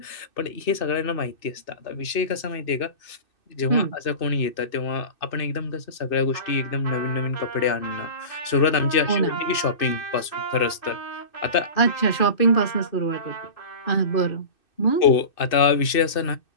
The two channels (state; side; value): late; right; 2.6 ms